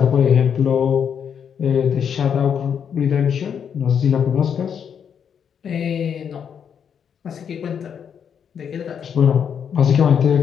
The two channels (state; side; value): quieter; right; 7.7 dB